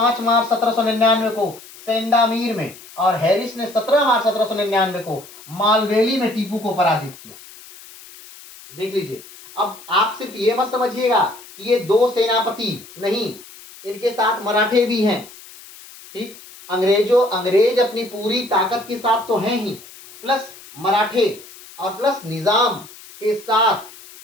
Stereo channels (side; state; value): left; noise; hiss, 19 dB below the sound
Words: मार्च 1799 को सेंडामीर में और हैरिस ने 17 मार्च 1799 को मालवेली में टीपू को पराजित किया। देख लीजिए, अब आप सिर्फ ये मत समझिएगा कि ये 2 सेनापति नहीं, इनके साथ मराठे भी हैं। ठीक, अंग्रेज अपनी पूरी ताकत के साथ तो हैं ही, प्लस मराठे और प्लस निजाम के